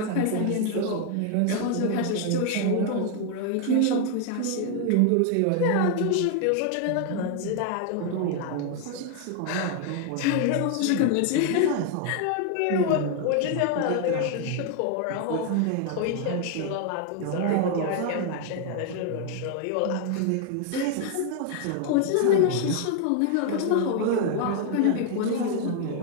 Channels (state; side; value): different; both; correlation 0.00